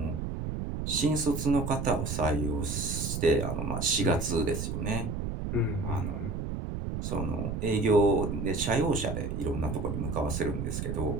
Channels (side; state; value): right; noise; rumble, 4 dB below the sound